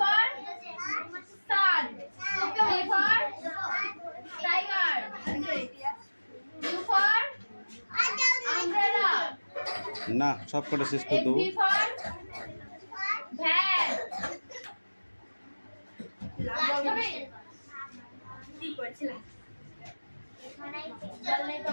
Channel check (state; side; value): inverted; both; correlation -1.00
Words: না সব কটা শেষ করে দেবো